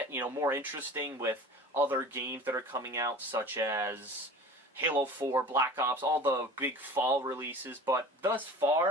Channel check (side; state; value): both; normal; correlation 0.40